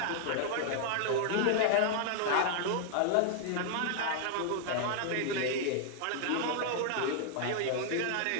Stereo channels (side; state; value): both; different; correlation 0.00